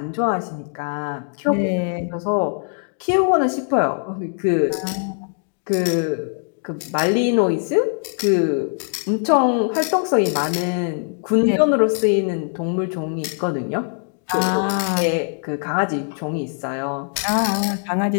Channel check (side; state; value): right; silent; 61 dB below the other